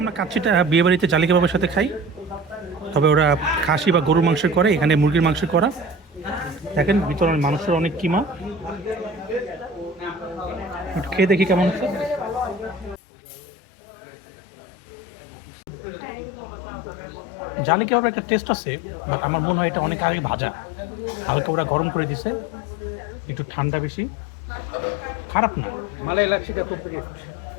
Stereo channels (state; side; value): drops out; right; at 13.0 s